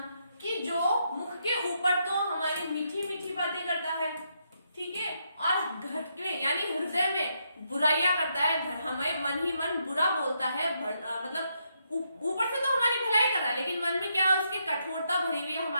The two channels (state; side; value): inverted; both; correlation -0.78